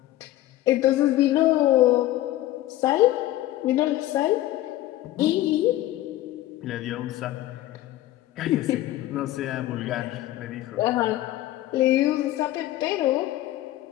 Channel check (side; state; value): right; quieter; 15.0 dB